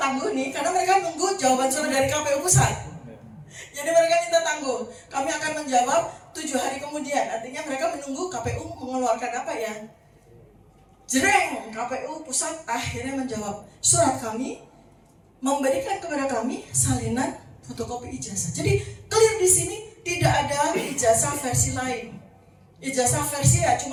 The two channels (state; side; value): identical; both; correlation 1.00